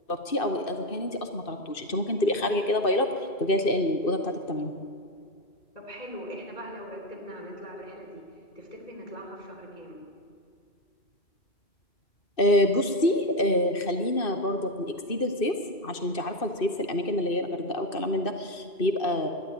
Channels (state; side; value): late; right; 2.6 ms